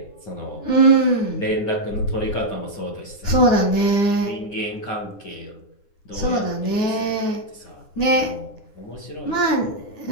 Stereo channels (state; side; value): late; right; 9.8 ms